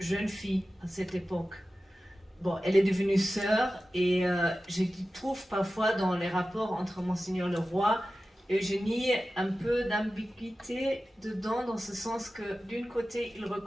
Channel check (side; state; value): both; normal; correlation 0.94